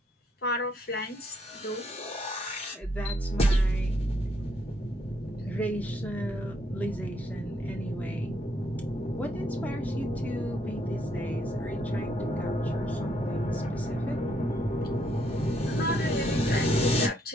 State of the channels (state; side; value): normal; both; correlation 0.73